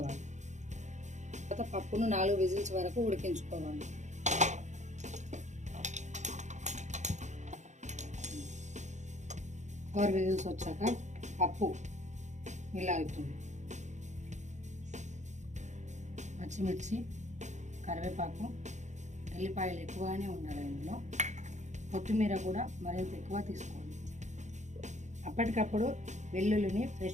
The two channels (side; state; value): left; late; 0.34 ms